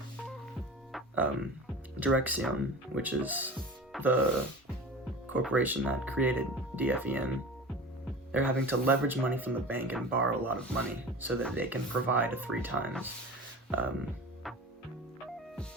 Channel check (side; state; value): both; normal; correlation 0.35